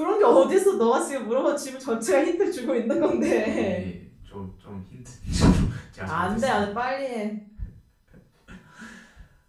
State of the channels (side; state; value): both; identical; correlation 1.00